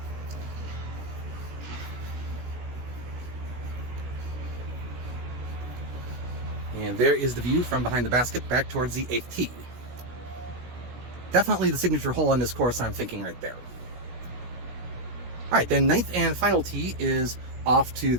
And there is the view from behind the basket back towards the 8th tee. Definitely the signature hole on this course, I'm thinking right there. All right, then 9th and final tee is off to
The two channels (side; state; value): left; late; 16 ms